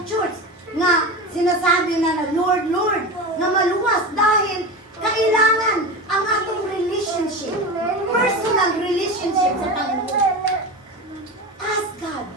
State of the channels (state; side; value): normal; both; correlation 0.26